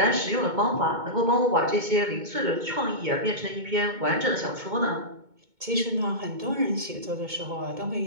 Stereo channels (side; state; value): left; late; 2.2 ms